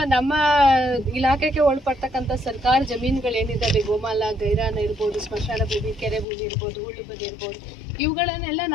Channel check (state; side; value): drops out; right; at 6.2 s